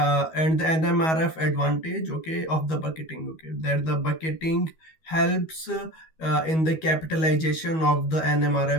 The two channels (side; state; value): right; late; 13 ms